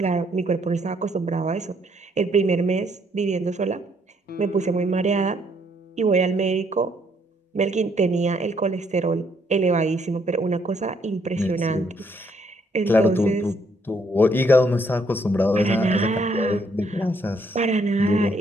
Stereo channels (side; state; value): both; normal; correlation 0.70